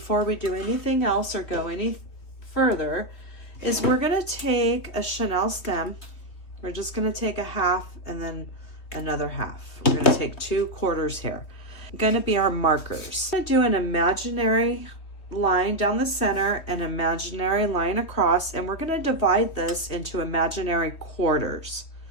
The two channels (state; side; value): late; right; 3.2 ms